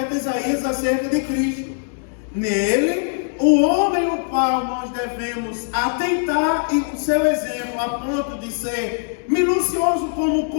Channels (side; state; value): right; silent; digital silence